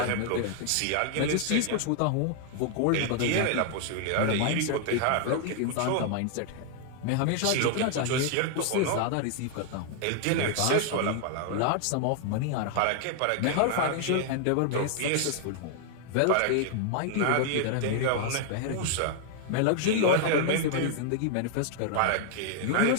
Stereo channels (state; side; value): different; both; correlation 0.00